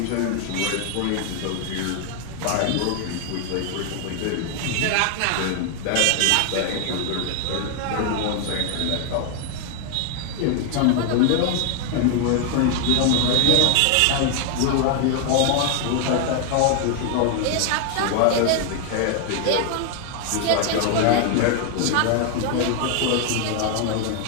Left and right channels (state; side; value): different; both; correlation 0.00